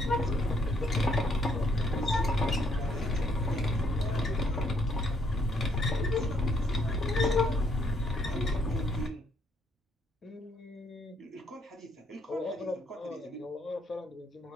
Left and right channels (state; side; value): normal; both; correlation 0.69